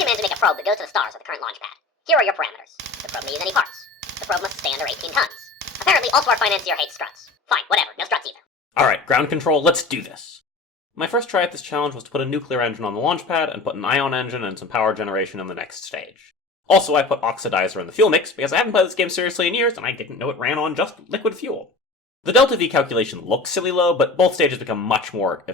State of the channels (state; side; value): quieter; right; 3.6 dB